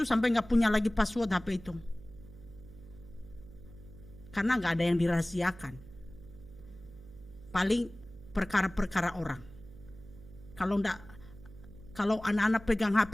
sampai nggak punya lagi password HP itu. Karena nggak ada yang dirahasiakan. Paling perkara-perkara orang. Kalau anak-anak pegang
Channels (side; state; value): right; noise; hum, 18 dB below the sound